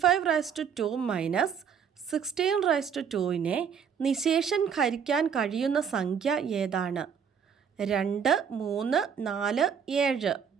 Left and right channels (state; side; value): quieter; left; 7.2 dB